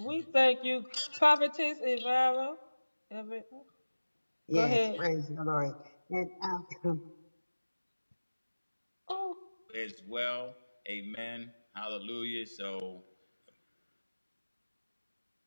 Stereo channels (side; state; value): both; inverted; correlation -1.00